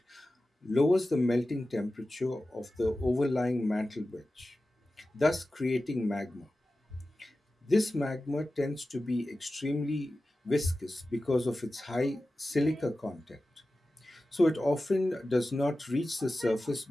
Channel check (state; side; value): normal; both; correlation 0.94